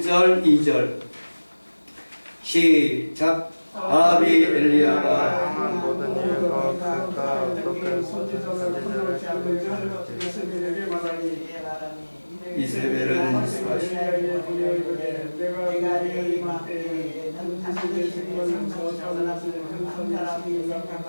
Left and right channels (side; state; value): both; inverted; correlation -1.00